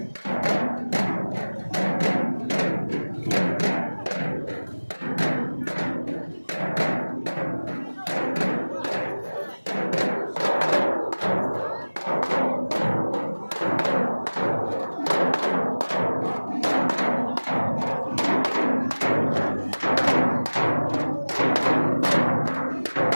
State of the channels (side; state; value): both; inverted; correlation -1.00